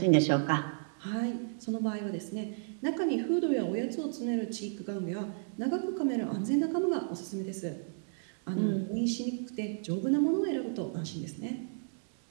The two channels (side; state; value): left; silent; digital silence